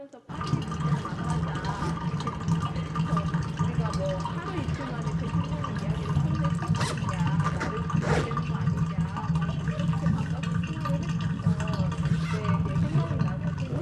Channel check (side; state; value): both; identical; correlation 1.00